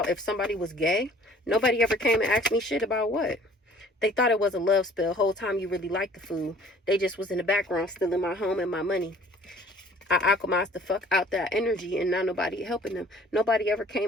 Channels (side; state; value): both; normal; correlation 0.53